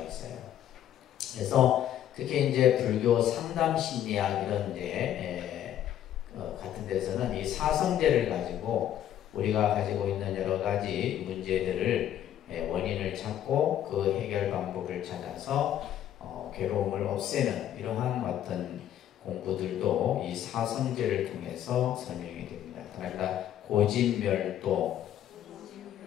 있어요. 그래서 특히 이제 불교 상담 심리학 이런 데 같은 데서는 이 사성제를 가지고 우리가 가지고 있는 여러 가지 문제들을 원인을 찾고 그 해결 방법을 찾아서 괴로움을 없애는 이러한 어떤 공부들도 이 사성제를 통해서 설명이 됩니다. 그러니까 고진멸도,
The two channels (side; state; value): right; quieter; 11.1 dB